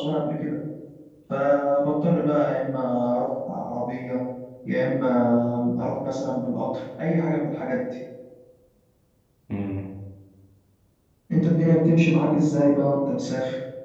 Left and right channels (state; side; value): identical; both; correlation 1.00